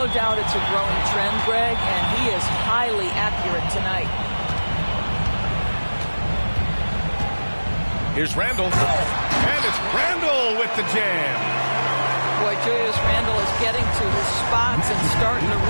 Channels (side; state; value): both; inverted; correlation -1.00